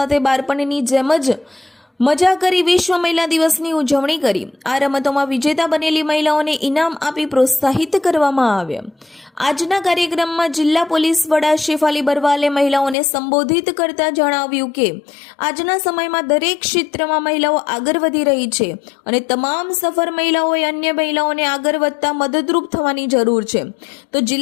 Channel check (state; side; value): drops out; right; at 13.0 s